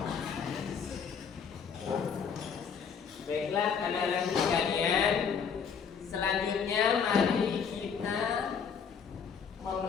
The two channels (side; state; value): right; quieter; 6.6 dB